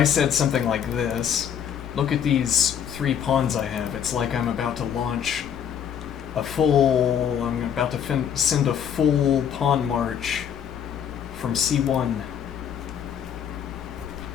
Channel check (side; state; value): right; quieter; 8.6 dB